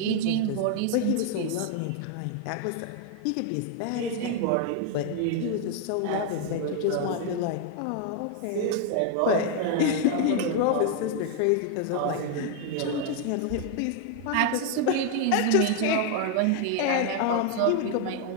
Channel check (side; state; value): both; different; correlation 0.00